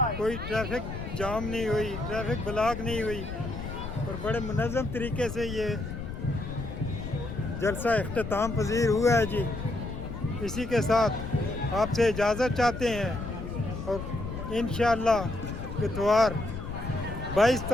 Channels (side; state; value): left; noise; rumble, 7 dB below the sound